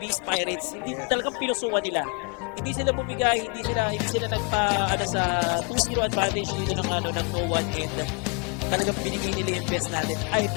Pirates, hindi talagang pinusukan nila. Hindi sila bumigay, hindi sila nagpa sa 2-0 advantage dito ng no one, and talagang binigay nila yung best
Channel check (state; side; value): quieter; right; 35.2 dB